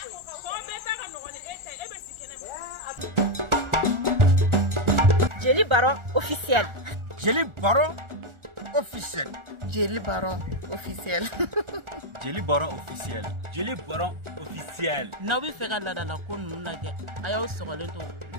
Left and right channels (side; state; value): left; late; 1.4 ms